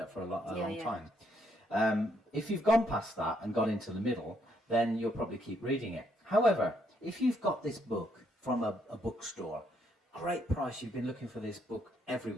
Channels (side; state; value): both; normal; correlation 0.73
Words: up for a long time. If you've gone past that and got into the middle, then you'll probably keep reading it. However, if you've got this book from a bookstore, great price, you've been looking for this book